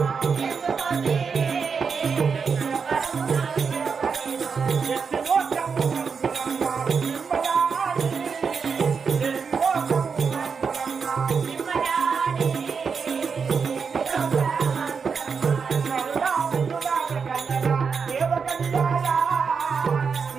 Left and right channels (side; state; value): left; quieter; 5.7 dB